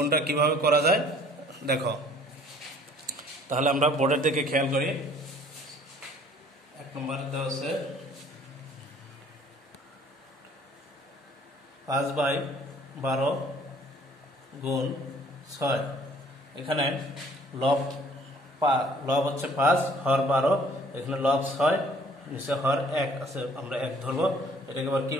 কিভাবে করা যায় দেখো, তাহলে আমরা বোর্ডের দিকে খেয়াল করি। 1 নম্বরে দেওয়া আছে 5/12 গুণ 6। এখানে লব হচ্ছে 5, হর 12, এখানে লব 6, নিচে হর 1 আছে, আমরা 1 ধরবো। এটাকে এবার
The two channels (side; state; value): both; normal; correlation 0.56